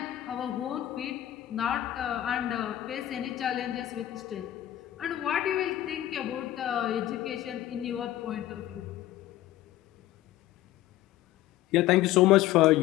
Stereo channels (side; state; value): right; quieter; 13.9 dB